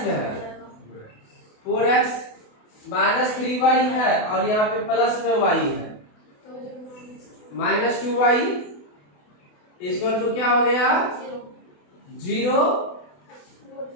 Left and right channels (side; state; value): right; late; 28 ms